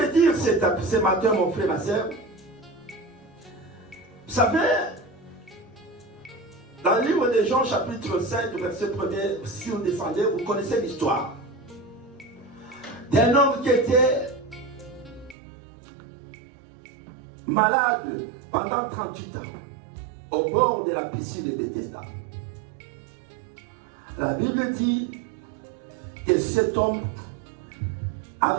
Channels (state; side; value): drops out; left; at 15.4 s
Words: dire ce matin, mon frère, ma soeur, vous savez, dans le livre de Jean, chapitre 5, verset 1er, si vous descendez, vous connaissez l'histoire d'un homme qui était malade pendant 38 ans, au bord de la piscine de Bethesda. La Bible dit que cet homme